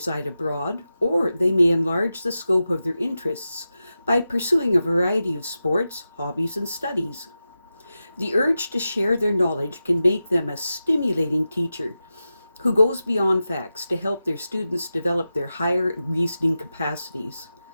abroad, or they may enlarge the scope of their interests by pursuing a variety of sports, hobbies, and studies. The urge to share their knowledge can make them a stimulating teacher who goes beyond facts to help their students develop their higher reasoning capacities.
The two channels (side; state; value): both; inverted; correlation -0.92